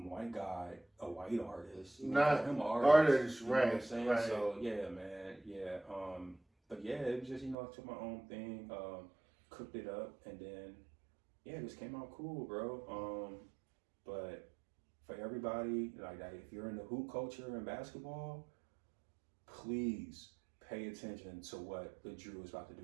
guy a white artist. Not him an artist, you know right? What I'm saying? Right. So yeah, man, yeah. But yeah, it was just I took my own thing, cooked it up, and then it just came out cool, bro. But for everybody, like if you're in the hoop culture and basketball, please pay attention to what the Drew is about to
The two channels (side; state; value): left; drops out; at 7.6 s